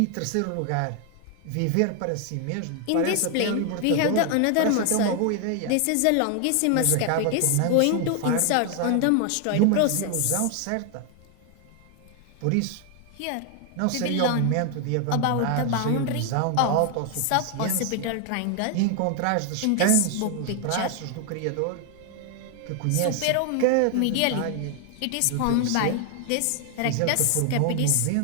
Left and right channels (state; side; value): different; both; correlation 0.00